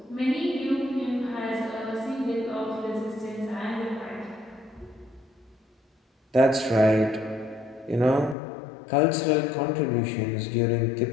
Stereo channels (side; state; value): right; drops out; at 8.3 s